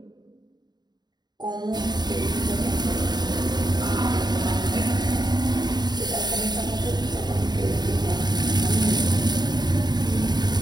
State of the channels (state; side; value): late; left; 0.20 ms